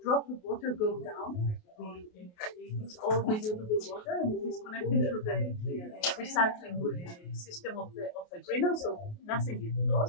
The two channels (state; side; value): late; right; 28 ms